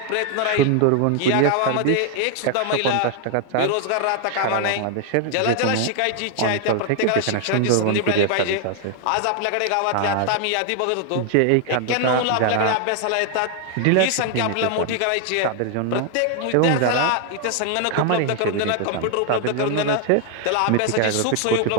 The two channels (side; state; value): both; different; correlation 0.00